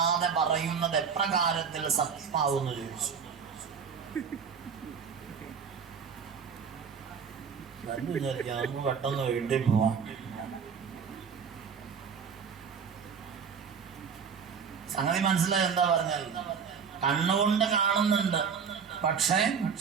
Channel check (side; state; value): left; quieter; 6.5 dB